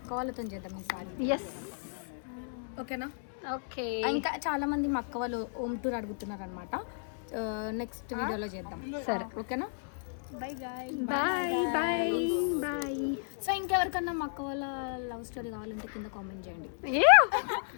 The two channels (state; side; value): silent; right; 56 dB below the other